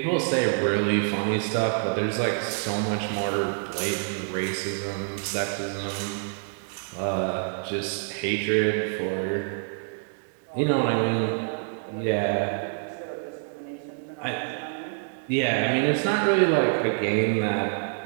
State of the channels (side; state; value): left; silent; 60 dB below the other